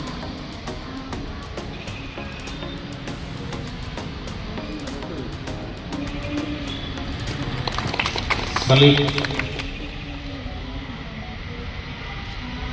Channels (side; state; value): both; identical; correlation 1.00